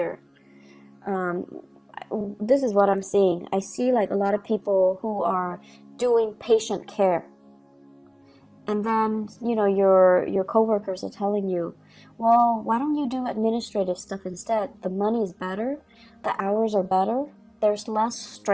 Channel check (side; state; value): both; identical; correlation 1.00